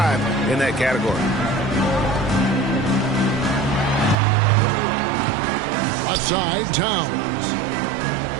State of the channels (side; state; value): left; drops out; at 4.2 s